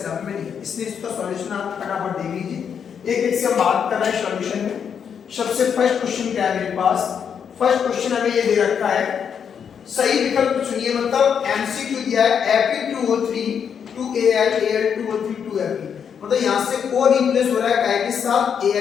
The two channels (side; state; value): right; quieter; 7.5 dB